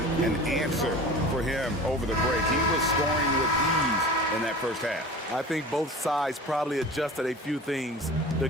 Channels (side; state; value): both; normal; correlation 0.38